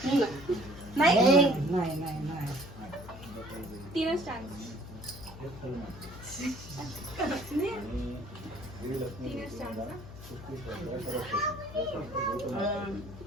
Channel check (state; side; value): noise; left; hum, 14 dB below the sound